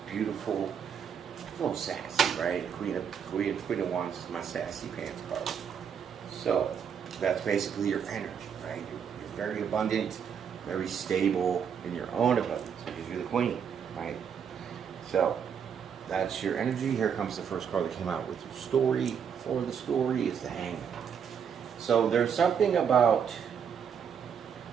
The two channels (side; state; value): left; quieter; 7.5 dB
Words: beautiful, a little sassy, right? Queen of Wands is my sassy pants card. So that's basically your energy, right? You're very abundant, very stable in your own abundance because you're the queen. Right? So, that's your energy. Here comes the first card that came out with your story. For the story is the Hangman. So, there's something about